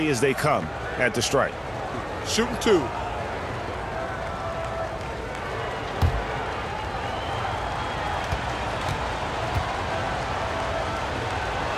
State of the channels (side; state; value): both; identical; correlation 1.00